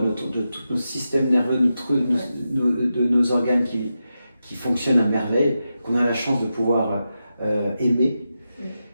tous nos systèmes nerveux, de nos organes qui fonctionnent à merveille, qu'on a la chance de pouvoir aimer,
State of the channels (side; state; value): both; inverted; correlation -0.90